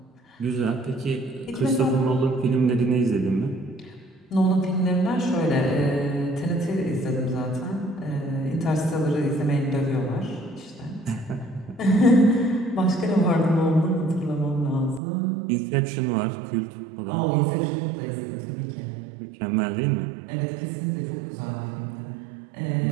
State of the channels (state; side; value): drops out; left; at 15.0 s